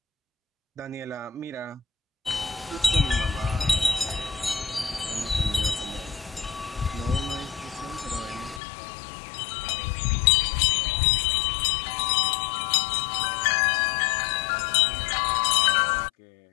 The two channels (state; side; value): drops out; right; at 8.6 s